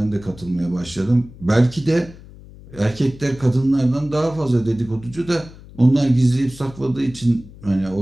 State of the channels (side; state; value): left; noise; hum, 19 dB below the sound